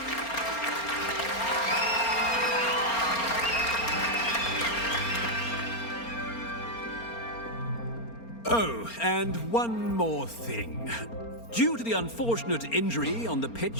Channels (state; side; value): late; right; 4.3 ms